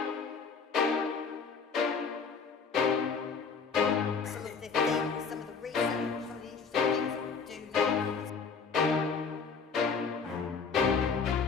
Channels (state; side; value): quieter; right; 5.4 dB